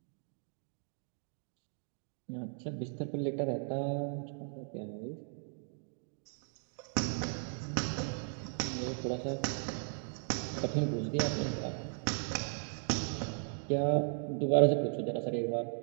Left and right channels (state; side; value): silent; left; 53 dB below the other